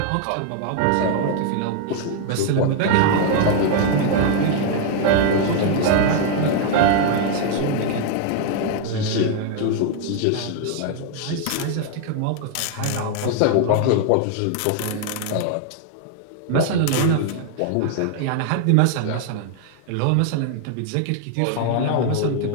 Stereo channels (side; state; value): both; different; correlation 0.00